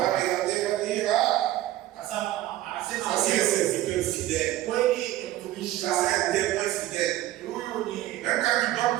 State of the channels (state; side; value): quieter; left; 14.8 dB